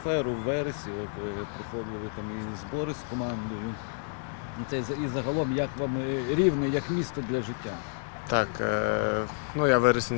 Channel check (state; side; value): silent; right; 58 dB below the other